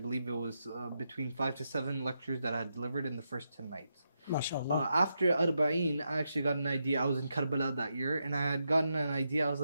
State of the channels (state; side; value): inverted; both; correlation -0.84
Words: it was between 5 to 7 lectures that I had delivered in the first 10 nights. MashaAllah. After Arbaeen, I actually got an idea. I was in Karbala that year, and I had gotten an idea. I was